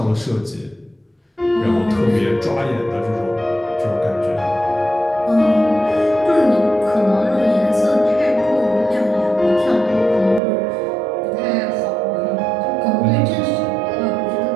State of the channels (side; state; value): left; drops out; at 10.4 s